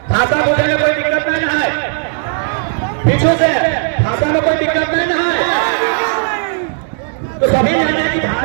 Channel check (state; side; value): silent; left; 60 dB below the other